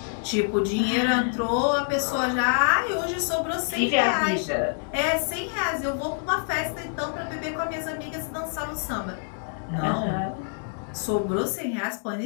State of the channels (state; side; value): silent; right; digital silence